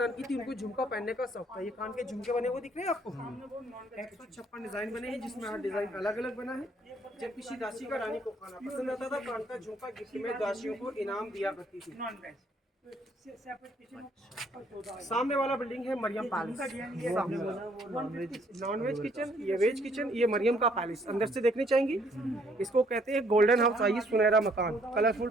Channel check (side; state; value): both; normal; correlation 0.65